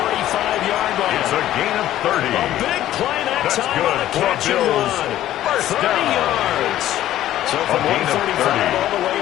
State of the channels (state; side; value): quieter; right; 13.2 dB